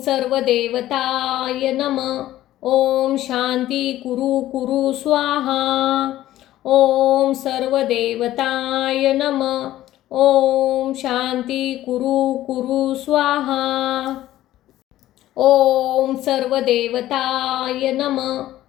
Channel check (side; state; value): right; quieter; 14.2 dB